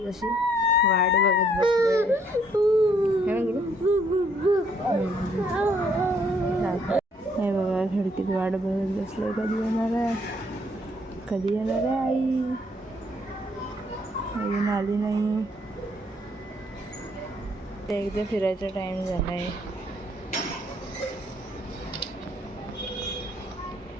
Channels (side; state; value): both; normal; correlation 0.67